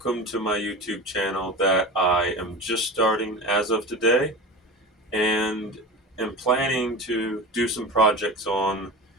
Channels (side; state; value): both; normal; correlation 0.29